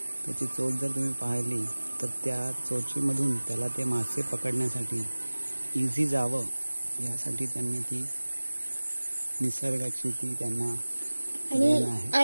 त्याची चोच जर तुम्ही पाहिली तर त्या चोचीमधून त्याला ते मासे पकडण्यासाठी इझी जावं यासाठी त्यांनी ती निसर्गाची ती त्यांना देण आहे.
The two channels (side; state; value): both; inverted; correlation -1.00